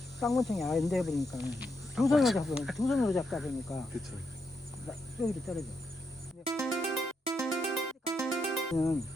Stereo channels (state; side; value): normal; both; correlation 0.81